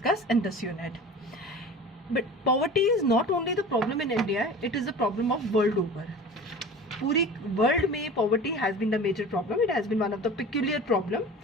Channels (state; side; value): normal; both; correlation 0.38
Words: in this unit. But poverty is not only the problem in India, it is the problem of world over. पूरी वर्ल्ड में poverty has been the major problem, it has been one of the peculiar problem.